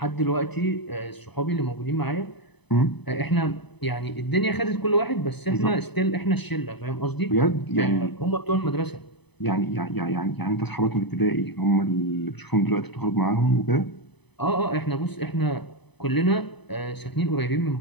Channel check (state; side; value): late; right; 0.99 ms